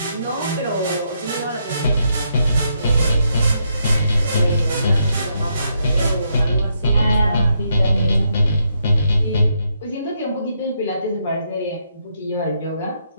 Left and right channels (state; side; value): inverted; both; correlation -0.78